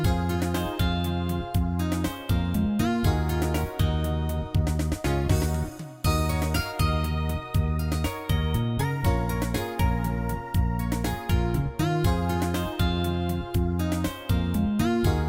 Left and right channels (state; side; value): identical; both; correlation 1.00